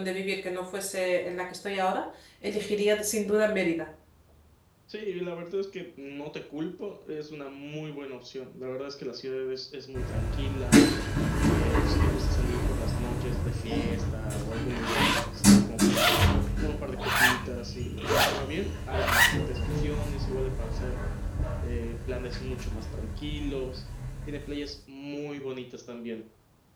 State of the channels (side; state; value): both; identical; correlation 1.00